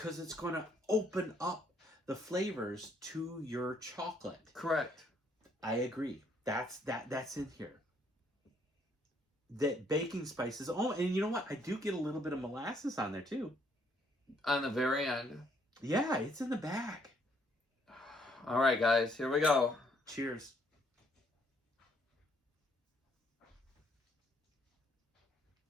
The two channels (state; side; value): normal; both; correlation 0.68